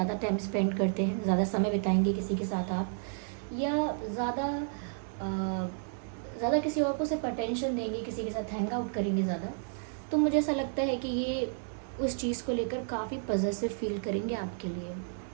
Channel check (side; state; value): left; silent; digital silence